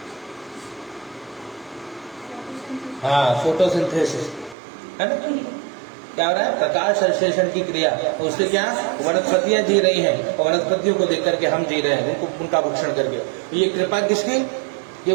हाँ, फोटोसिंथेसिस, है ना। क्या हो रहा है? प्रकाश संश्लेषण की क्रिया। उससे क्या वनस्पतियां जी रही हैं और वनस्पतियों को देख करके हम जी रहे हैं, उनका भक्षण करके। ये कृपा किसकी?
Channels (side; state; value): left; drops out; at 4.5 s